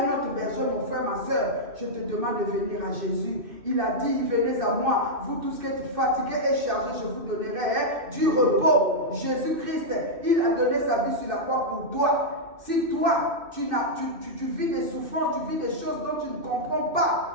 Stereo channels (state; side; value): late; left; 2.5 ms